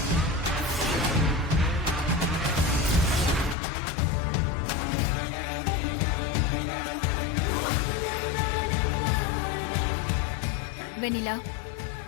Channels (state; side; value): drops out; right; at 3.6 s